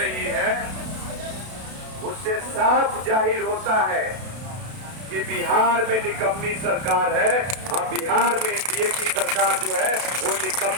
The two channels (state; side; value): late; left; 32 ms